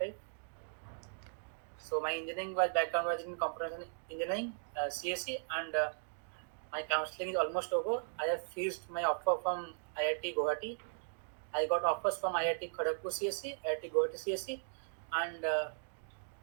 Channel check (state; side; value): silent; left; digital silence